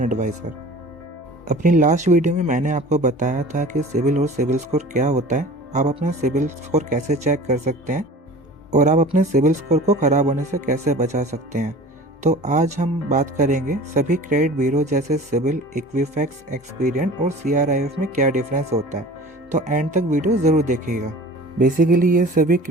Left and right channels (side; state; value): both; normal; correlation 0.41